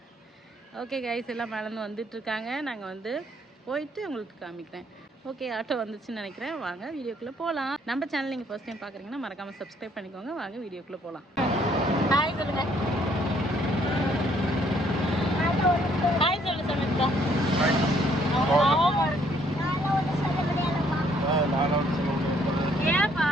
ஓகே கைஸ், எல்லாம் மேலேருந்து வந்துட்டுருக்காங்க. நாங்கள் வந்து போயிட்டு உங்களுக்கு காமிக்கிறேன். ஓகே, ஆட்டோ வந்துச்சுன்னு நினைக்கிறேன். வாங்க வீடியோக்குள்ளே போகலாம். நம்ம சேனல் நீங்கள் ஃபர்ஸ்ட் டைம் பார்க்குறீங்கன்னா மறக்காமல் சப்ஸ்கிரைப் பண்ணிக்கோங்க. வாங்க வீடியோக்குள்ளே போகலாம். ஹாய் சொல்லுங்கள். ஹாய் சொல்லு சமீபா. ஏப்பா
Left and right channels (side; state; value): both; normal; correlation 0.66